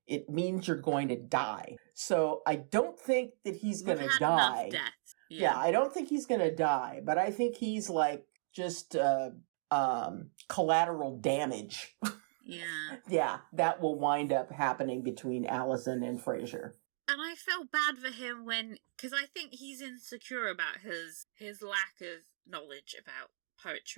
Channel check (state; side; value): silent; left; digital silence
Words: it means you're going to die. So I don't think that he's going to die. Yeah, I don't think he's going to die, but I think he's like just collateral damage. Yeah. Yeah, that will wind up happening between Allison and Fraser. And I felt bad for him because I think he's insecure about his lack of knowledge about